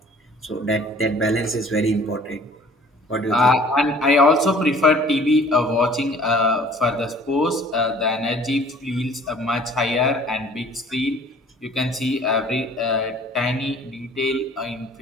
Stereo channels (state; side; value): normal; both; correlation 0.52